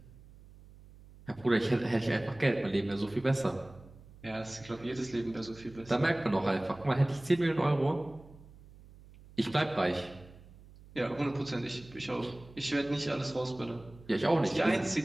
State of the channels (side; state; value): right; noise; hum, 21 dB below the sound